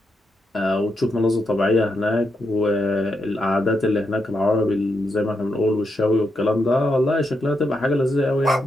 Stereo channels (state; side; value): normal; both; correlation 0.83